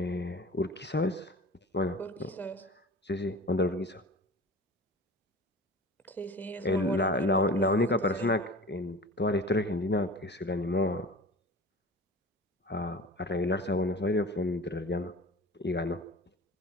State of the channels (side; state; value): both; normal; correlation 0.37